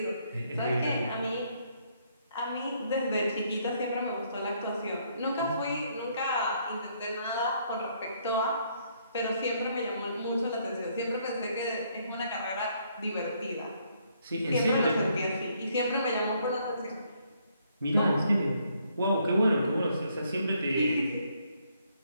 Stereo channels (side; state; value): both; inverted; correlation -0.70